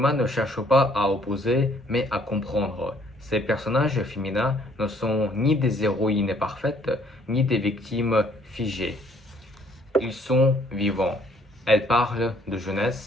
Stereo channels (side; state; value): both; normal; correlation 0.63